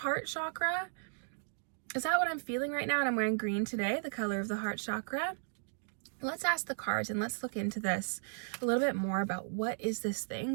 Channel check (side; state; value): left; silent; digital silence